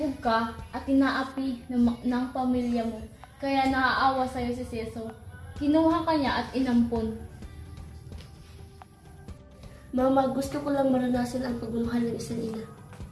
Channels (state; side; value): identical; both; correlation 1.00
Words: ka at inaapi ng pamilya mo, kaya naaawa sa'yo si Ceso. Kinuha ka niya at inampon. Mama, gusto ko lang maranasan ang pagmamahal ng isang ina.